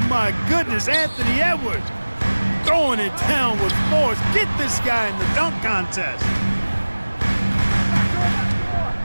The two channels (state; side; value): inverted; both; correlation -1.00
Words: my goodness, Anthony Edwards. Throwing it down with force. Get this guy in the dunk contest.